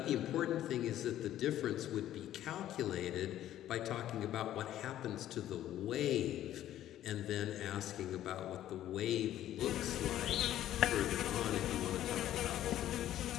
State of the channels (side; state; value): right; quieter; 12.5 dB